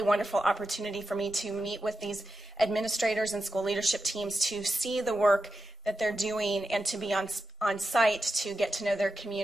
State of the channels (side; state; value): both; normal; correlation 0.91